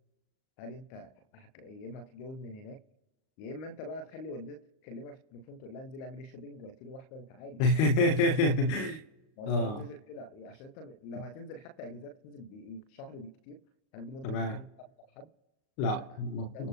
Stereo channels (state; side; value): late; right; 38 ms